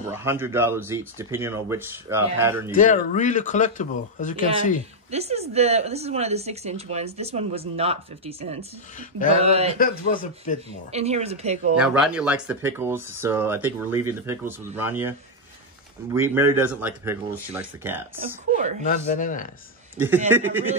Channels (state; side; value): normal; both; correlation 0.01